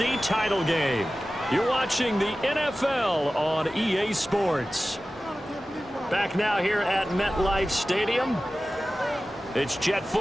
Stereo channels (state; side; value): normal; both; correlation 0.95